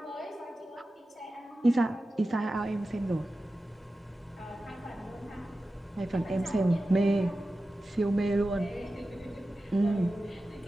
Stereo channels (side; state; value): both; normal; correlation 0.94